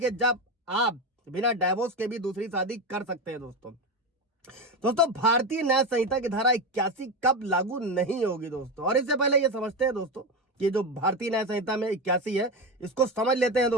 जब आप बिना डाइवोर्स के भी दूसरी शादी कर सकते हैं दोस्तों भारतीय न्याय संहिता की धारा 81 कब लागू नहीं होगी दोस्तों। और इससे पहले ये समझते हैं दोस्तों कि जो भारतीय न्याय संहिता में 81 है, इसको समझ लेते हैं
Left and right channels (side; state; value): both; normal; correlation 0.16